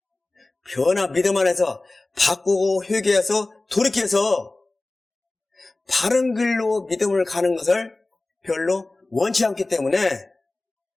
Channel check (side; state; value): right; quieter; 3.0 dB